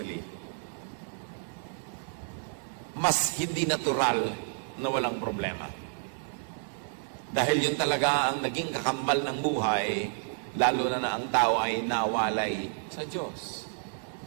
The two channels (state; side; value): silent; left; digital silence